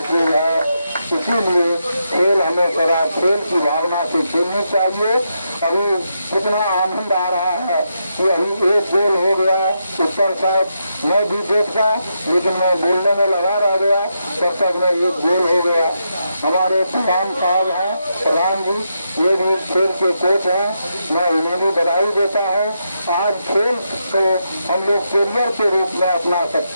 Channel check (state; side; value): inverted; both; correlation -0.83